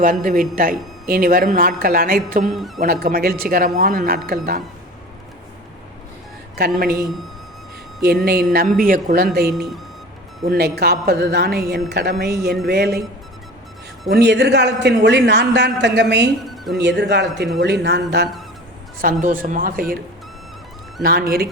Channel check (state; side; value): normal; both; correlation 0.37